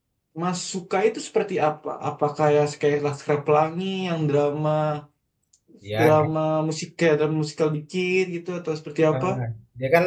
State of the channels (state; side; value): identical; both; correlation 1.00